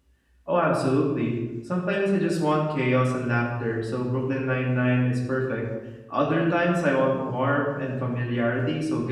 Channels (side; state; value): both; identical; correlation 1.00